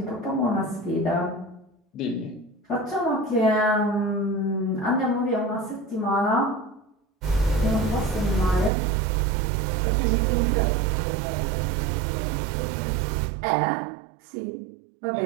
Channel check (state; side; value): drops out; left; at 8.7 s